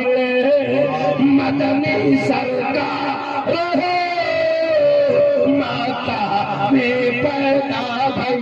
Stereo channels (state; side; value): identical; both; correlation 1.00